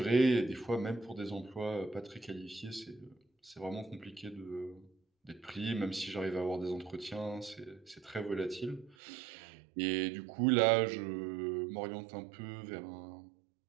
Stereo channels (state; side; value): drops out; left; at 9.0 s